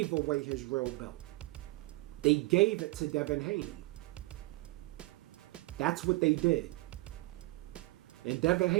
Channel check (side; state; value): left; quieter; 21.6 dB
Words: away his real belt. They gave it to Devin Haney. That's what they did. And Devin